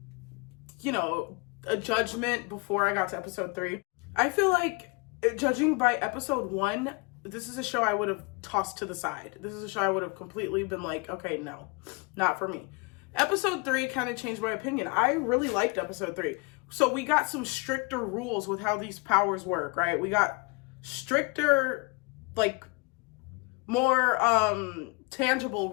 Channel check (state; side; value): quieter; right; 30.0 dB